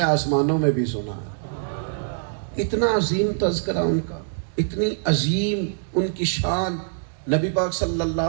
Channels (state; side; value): silent; left; digital silence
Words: آسمانوں میں بھی سنا ہے. اتنا عظیم تذکرہ ان کا, اتنی عظیم ان کی شان. نبی پاک صلی